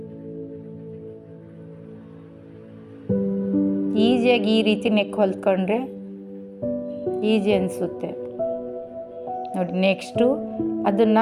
ಈಸಿಯಾಗಿ ಈ ರೀತಿ ನೆಕ್ ಹೊಲ್ಕೊಂಡ್ರೆ ಈಸಿ ಅನಿಸುತ್ತೆ ನೋಡಿ. ನೆಕ್ಸ್ಟು ಅದನ್ನು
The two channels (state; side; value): identical; both; correlation 1.00